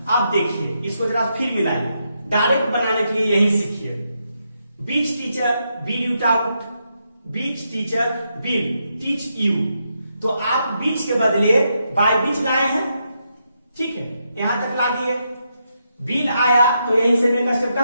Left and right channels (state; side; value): inverted; both; correlation -0.81